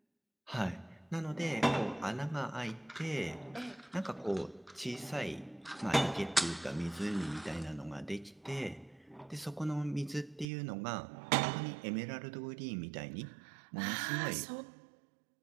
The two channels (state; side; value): drops out; left; at 10.5 s